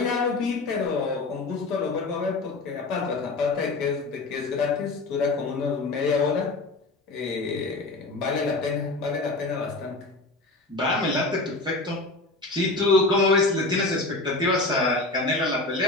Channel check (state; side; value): quieter; right; 3.2 dB